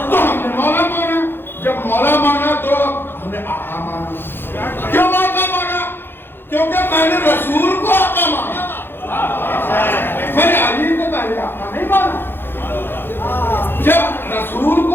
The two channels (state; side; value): late; right; 0.10 ms